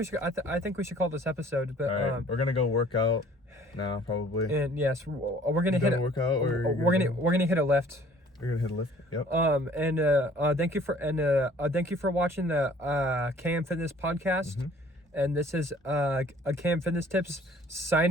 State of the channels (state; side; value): normal; both; correlation 0.54